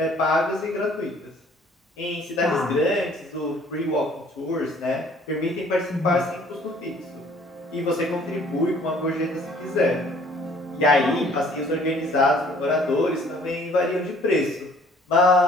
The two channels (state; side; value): normal; both; correlation 0.57